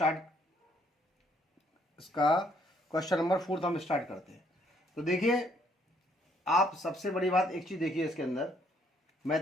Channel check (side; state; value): both; normal; correlation 0.68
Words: इसका क्वेश्चन नंबर 4 हम स्टार्ट करते हैं। तो देखिए आप सबसे बड़ी बात एक चीज़ देखिए, इसके अंदर